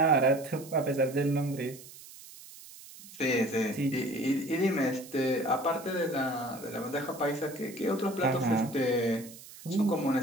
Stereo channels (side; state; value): right; noise; hiss, 18 dB below the sound